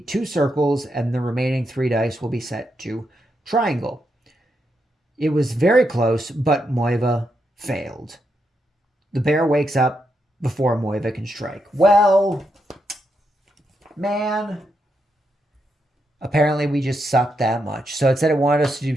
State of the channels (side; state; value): both; normal; correlation 0.82